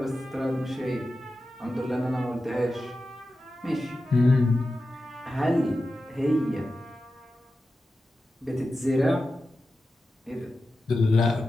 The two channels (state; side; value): normal; both; correlation 0.92